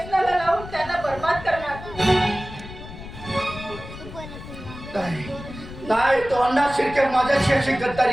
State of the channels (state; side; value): noise; left; rumble, 13 dB below the sound